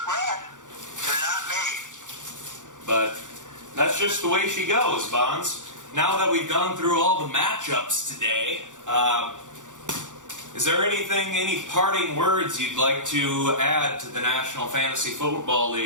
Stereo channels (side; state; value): left; late; 0.86 ms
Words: bred. They're not made. But that's just the way she goes, Bahns. Now that we've gone through all the matchups today, is there any parting words you'd like to add to the National Fantasy Football